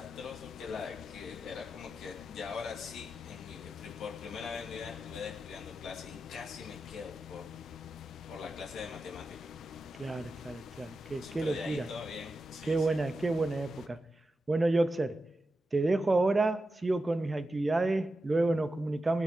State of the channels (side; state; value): both; normal; correlation 0.90